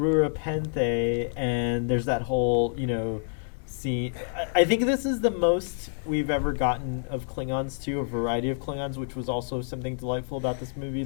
and there's that whole, scene. I think this is the most we've ever gotten of Klingons too, a variety of Klingons, which was also something delightful about this movie.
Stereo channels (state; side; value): silent; right; digital silence